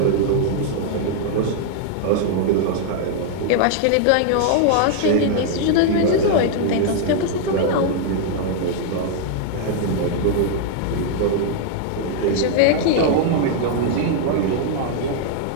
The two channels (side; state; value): both; different; correlation 0.00